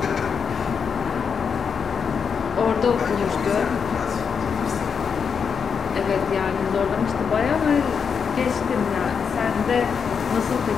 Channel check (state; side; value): quieter; right; 6.4 dB